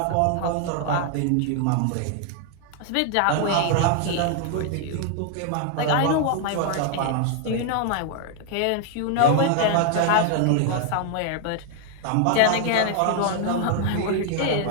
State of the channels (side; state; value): both; different; correlation 0.00